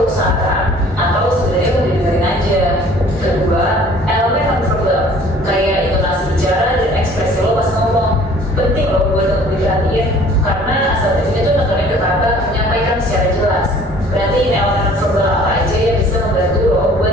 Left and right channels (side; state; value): both; normal; correlation 0.52